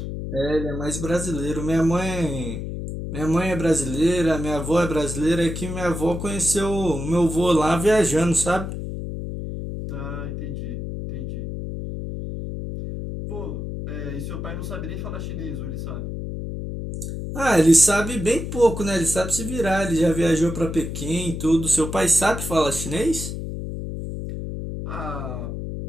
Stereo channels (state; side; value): noise; left; hum, 6 dB below the sound